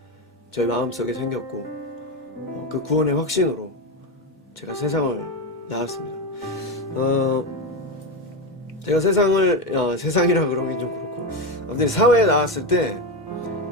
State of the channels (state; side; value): normal; both; correlation 0.14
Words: 저희 마음속에 생겼고, 그 구원의 확신으로 제가 세상을 나왔습니다. 제가 세상이라 그러긴 좀 그렇고, 아무튼 사회에 나왔을 때